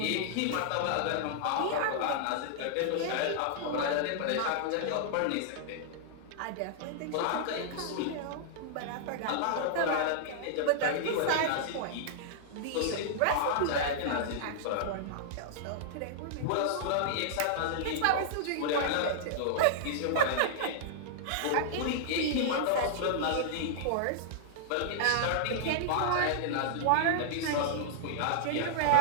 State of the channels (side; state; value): both; different; correlation -0.01